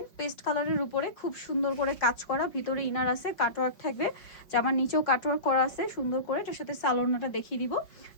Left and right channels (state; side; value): late; right; 5.5 ms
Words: পেস্ট কালারের উপরে খুব সুন্দর করে কাজ করা, ভিতরে ইনার আছে, কাটওয়ার্ক থাকবে, জামার নিচেও কাটওয়ার্ক করা আছে সুন্দর করে। এটার সাথে সালোয়ারটা দেখিয়ে দিব।